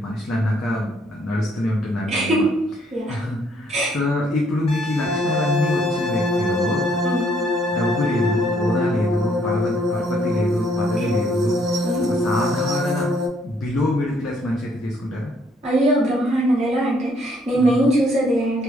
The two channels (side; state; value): both; normal; correlation 0.67